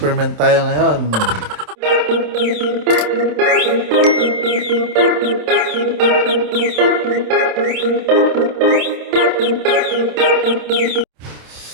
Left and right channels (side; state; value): left; late; 27 ms